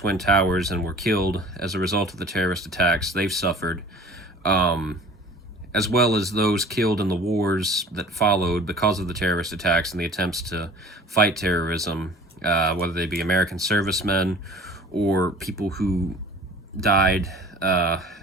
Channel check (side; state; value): both; normal; correlation 0.46